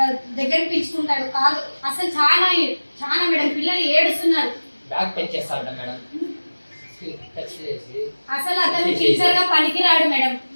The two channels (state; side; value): inverted; both; correlation -1.00